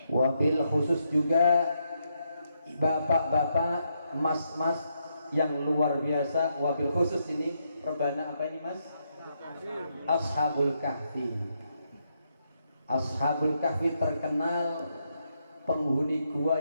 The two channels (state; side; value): inverted; both; correlation -0.79